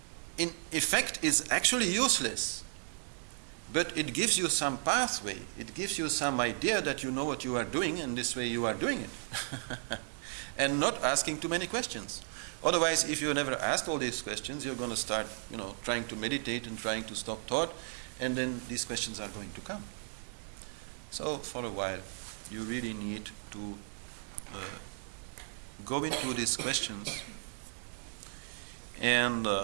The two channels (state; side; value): silent; left; digital silence